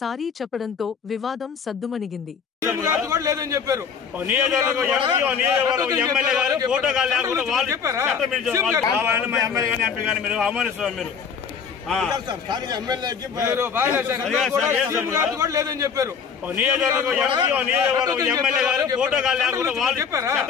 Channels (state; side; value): quieter; right; 6.5 dB